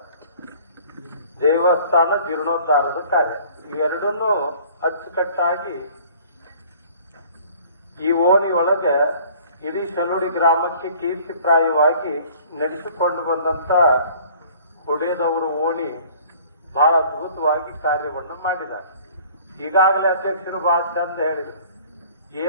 ದೇವಸ್ಥಾನ ಜೀರ್ಣೋದ್ಧಾರದ ಕಾರ್ಯ, ಇವೆರಡನ್ನೂ ಅಚ್ಚುಕಟ್ಟಾಗಿ ಈ ಓಣಿ ಒಳಗೆ ಇಡೀ ಶಲುಡಿ ಗ್ರಾಮಕ್ಕೆ ಕೀರ್ತಿಪ್ರಾಯವಾಗಿ ನಡೆಸಿಕೊಂಡು ಬಂದಂತ ಹೊಡೆದವರು ಓಣಿ ಬಹಳ ಅದ್ಭುತವಾಗಿ ಕಾರ್ಯವನ್ನು ಮಾಡಿದ್ದಾರೆ. ಈಗಾಗಲೇ ಅಧ್ಯಕ್ಷರು ಬಹಳ ಚಂದ ಹೇಳಿದರು,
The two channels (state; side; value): inverted; both; correlation -0.52